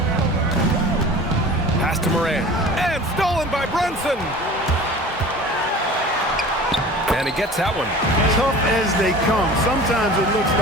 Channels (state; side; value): normal; both; correlation 0.40